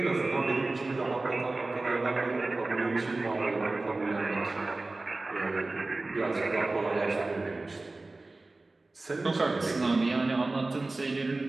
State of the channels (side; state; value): left; quieter; 3.2 dB